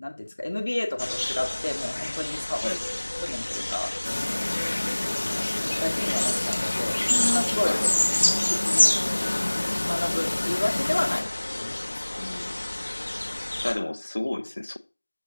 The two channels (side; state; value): both; inverted; correlation -1.00